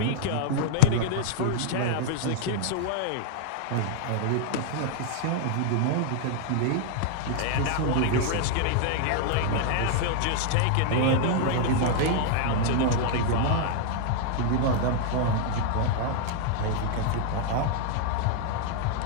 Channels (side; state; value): both; different; correlation 0.00